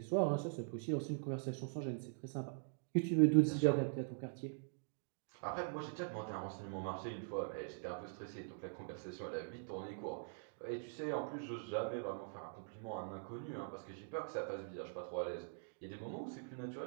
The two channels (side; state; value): left; silent; digital silence